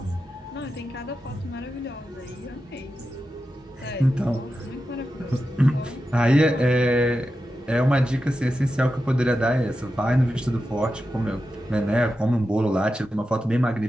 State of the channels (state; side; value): normal; both; correlation 0.90